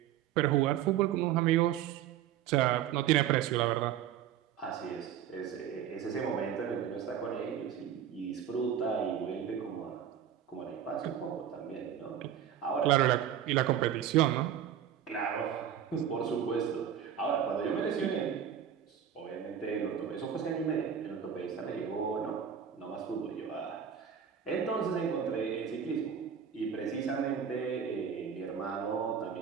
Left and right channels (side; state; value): left; quieter; 9.1 dB